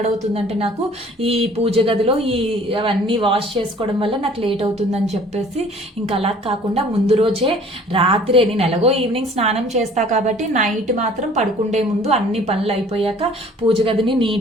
నాకు ఈ పూజ గదిలో ఈ అవన్నీ వాష్ చేసుకోవడం వల్ల నాకు లేట్ అవుతుందని చెప్పేసి ఇంకా అలా కాకుండా ముందు రోజే రాత్రే, నేను ఎలాగో ఈవినింగ్ స్నానం చేస్తా కాబట్టి నైట్ మాత్రం పడుకుండే ముందు అన్ని పనులు అయిపోయాక పూజ గదిని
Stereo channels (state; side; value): normal; both; correlation 0.52